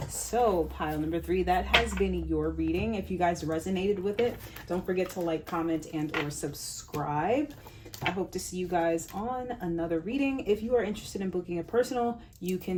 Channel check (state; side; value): identical; both; correlation 1.00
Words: so pile number 3, that has been your reading. If you guys resonated with it, don't forget to like, comment, and or subscribe. I hope to see you guys on another reading. If you are interested in booking a personal, you